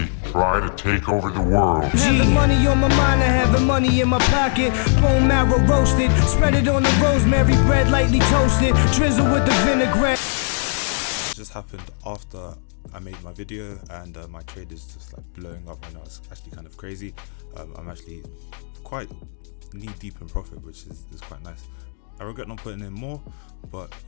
Try to take over the world. Having money on my mind, I having money in my pocket. Bone marrow roasted, spread it on the rosemary bread, lightly toasted, drizzle with the vinaigrette. It just happened after I made my video, and my trade is just like blowing up right now. It's actually kind of crazy. I'm actually quite knee deep in profit, which is quite nice. I regret not putting in more, but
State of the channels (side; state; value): right; silent; digital silence